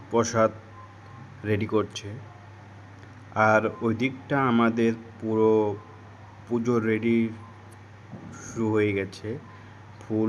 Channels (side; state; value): both; identical; correlation 1.00